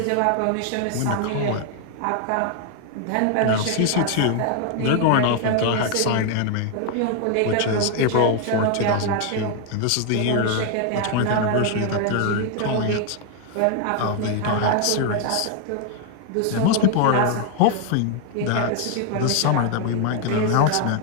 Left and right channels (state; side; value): different; both; correlation 0.00